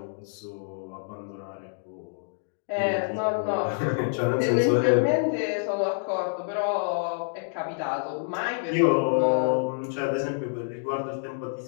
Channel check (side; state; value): right; silent; digital silence